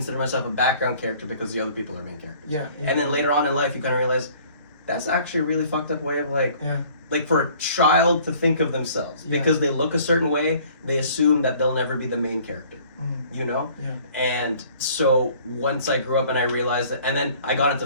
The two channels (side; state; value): both; inverted; correlation -0.54